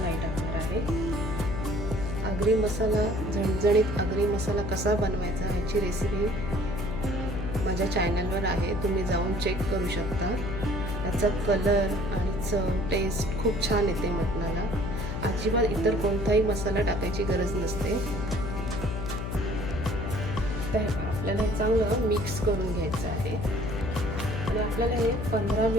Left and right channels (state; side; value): noise; left; hum, 4 dB below the sound